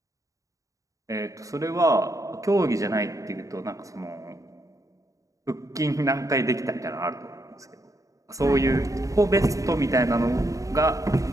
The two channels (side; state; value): left; late; 0.16 ms